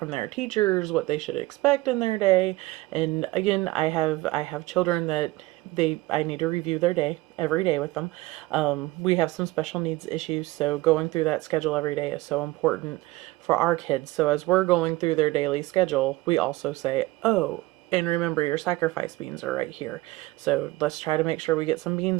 their teachers, what they should expect in their day. And again, I have children that I need to review their day every day with them. We have some special needs issues, so going through that schedule every day is so important for our kids. So as we're going through their daily schedule, we also say, oh, and remember your sacrifice beans are right here. So let's try to make sure we get some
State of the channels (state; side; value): quieter; left; 19.5 dB